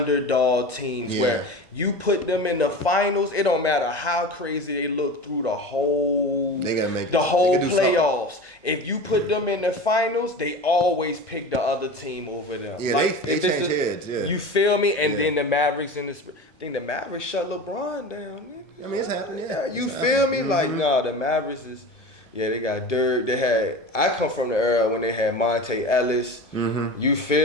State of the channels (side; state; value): both; normal; correlation 0.32